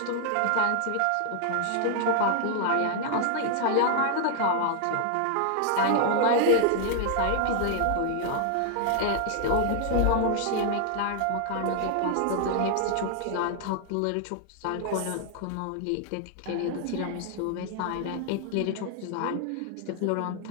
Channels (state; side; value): different; both; correlation 0.00